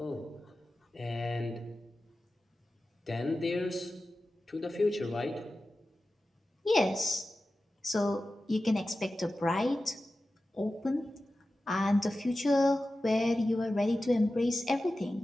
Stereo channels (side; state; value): both; normal; correlation 0.94